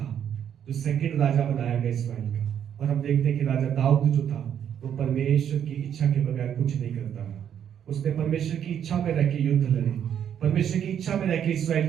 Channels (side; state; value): left; quieter; 9.1 dB